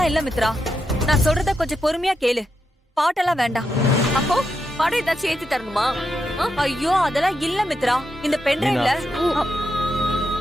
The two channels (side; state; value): both; normal; correlation 0.85